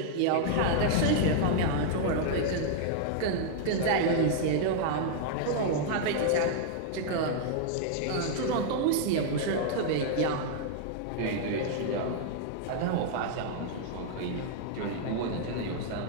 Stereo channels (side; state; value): both; different; correlation -0.01